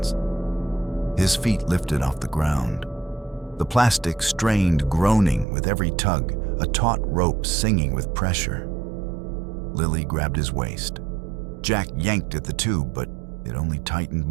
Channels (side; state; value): left; drops out; at 5.5 s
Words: His feet lifted off the ground. The plastic strained, groaning with every tug, a taut rope singing with pressure. Lily grabbed his waist. Jack yanked at the tube, but it only tightened